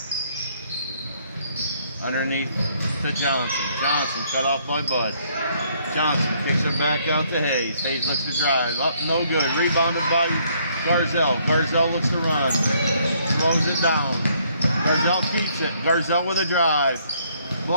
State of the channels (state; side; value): inverted; both; correlation -0.67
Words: Underneath to Johnson. Johnson cut off by Bud. Johnson kicks it back out to Hayes. Hayes looks to drive. Up, no good. Rebounded by Garzel. Garzel looks to run. Slows it down. Garzel keeps it. Garzel with a drive.